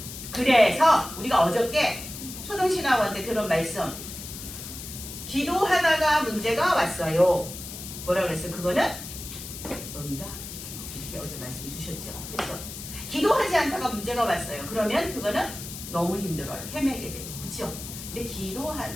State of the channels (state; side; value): noise; left; hiss, 10 dB below the sound